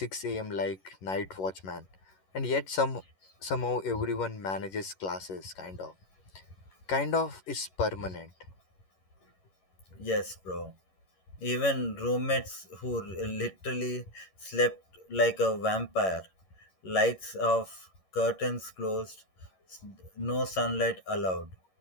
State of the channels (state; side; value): late; right; 11 ms